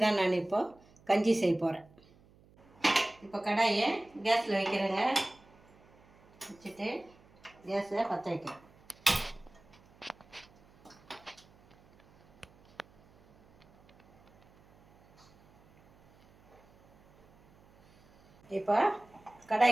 தான் நான் இப்போது கஞ்சி செய்ய போகிறேன். இப்போ கடாயை கேஸில் வைக்கிறேங்க. வச்சுட்டு கேஸை பற்ற வைக்கிறேன். இப்போ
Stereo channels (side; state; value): right; noise; hum, 28 dB below the sound